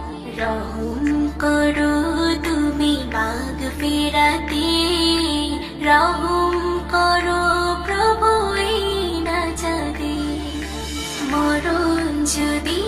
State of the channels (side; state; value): both; identical; correlation 1.00